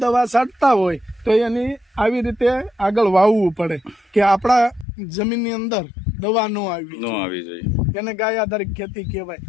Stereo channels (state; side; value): drops out; right; at 4.9 s